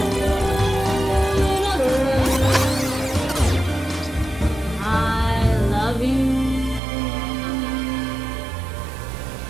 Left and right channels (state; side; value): drops out; left; at 6.8 s